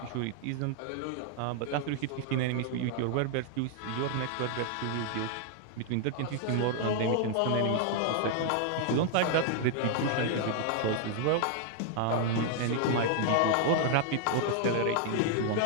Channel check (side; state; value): both; different; correlation 0.00